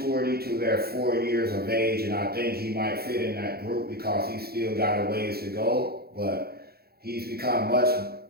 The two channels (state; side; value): late; left; 0.45 ms